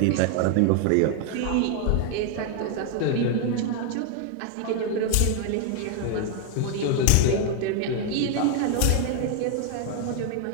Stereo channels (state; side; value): different; both; correlation 0.00